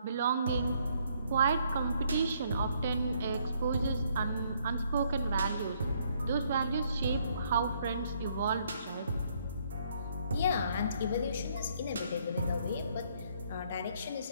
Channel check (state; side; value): inverted; both; correlation -0.68